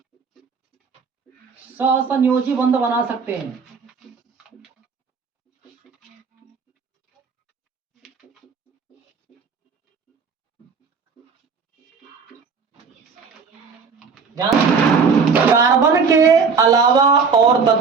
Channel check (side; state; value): left; quieter; 5.4 dB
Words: सहसंयोजी बंध बना सकते हैं। कार्बन के अलावा और